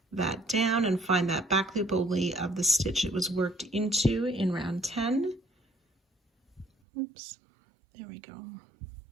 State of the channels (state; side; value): drops out; left; at 6.7 s